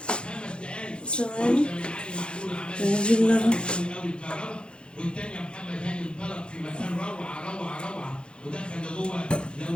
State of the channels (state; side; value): late; right; 0.054 ms